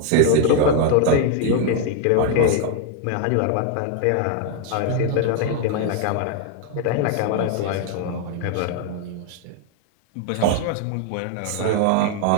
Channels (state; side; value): different; both; correlation 0.01